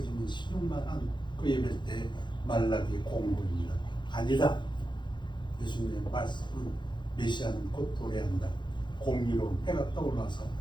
신용만한 그 예배 때 말라기 공고입니다. 아니다. 예수님의 말씀은 메시아는 곧 도래한다. 공의로운 해가 떠올라서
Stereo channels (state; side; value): late; right; 0.22 ms